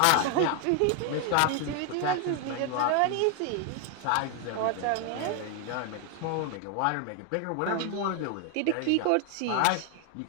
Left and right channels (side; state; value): both; different; correlation 0.00